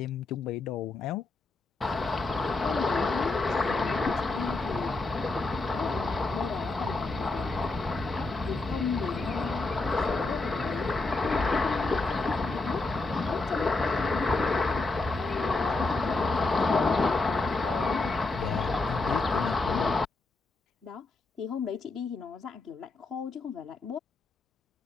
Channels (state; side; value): quieter; right; 3.4 dB